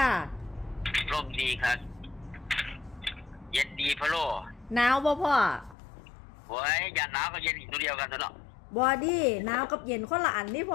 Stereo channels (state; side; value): drops out; right; at 5.8 s